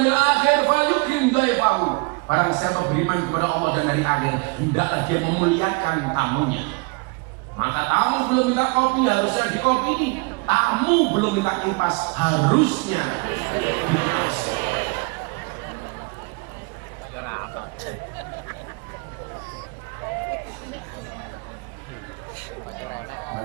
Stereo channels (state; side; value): quieter; left; 30.8 dB